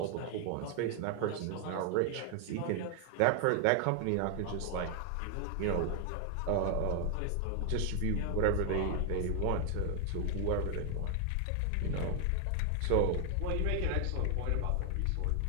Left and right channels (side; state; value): both; different; correlation 0.00